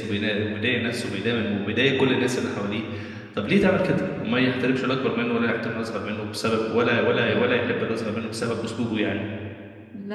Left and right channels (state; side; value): identical; both; correlation 1.00